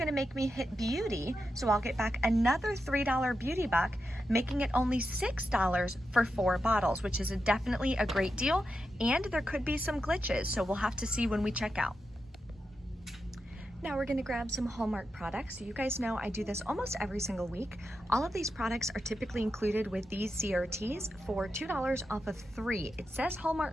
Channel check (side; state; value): both; normal; correlation 0.88